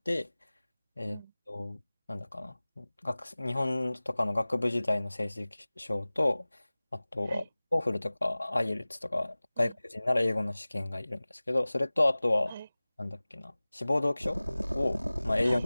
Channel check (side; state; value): both; inverted; correlation -0.99